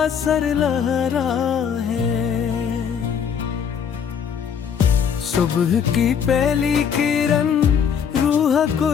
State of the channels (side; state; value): right; quieter; 7.4 dB